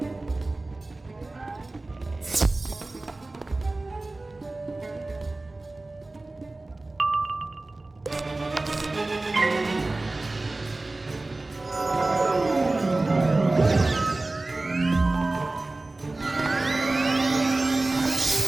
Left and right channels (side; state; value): left; quieter; 3.0 dB